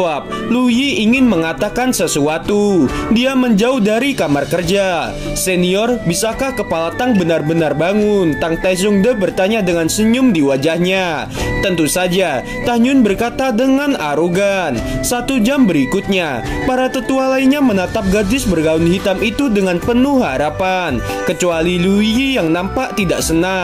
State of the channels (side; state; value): both; identical; correlation 1.00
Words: Lu Yi ingin mengatakan sesuatu. Dia menjauh dari kamar kerja. "Senior, bisakah Kepala Tang benar-benar bangun?" Tang Taizongde bertanya dengan senyum di wajahnya. "Tentu saja," Tan Yun berkata dengan arogan. 1 jam berikutnya, para tetua lainnya menatap gadis bergaun hitam itu dengan penuh harapan, kecuali Lu Yi yang nampak tidak